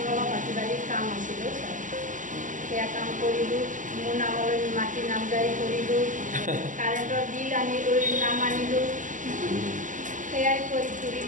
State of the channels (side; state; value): left; late; 0.37 ms